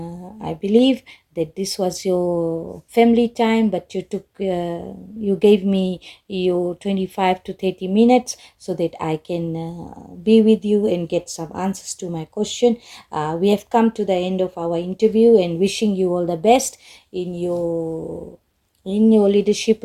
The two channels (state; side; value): identical; both; correlation 1.00